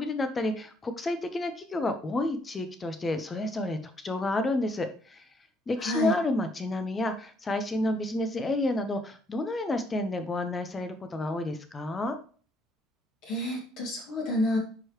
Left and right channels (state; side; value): normal; both; correlation 0.70